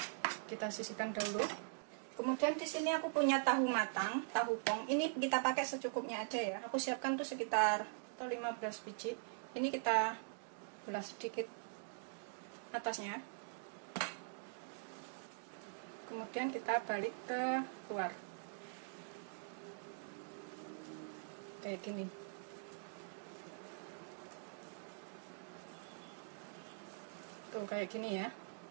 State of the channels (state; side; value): silent; left; digital silence